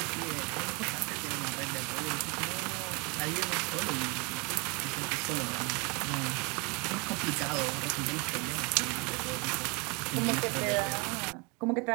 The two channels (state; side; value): quieter; left; 30.5 dB